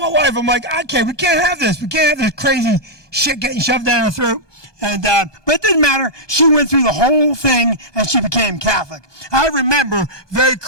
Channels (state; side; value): late; right; 1.2 ms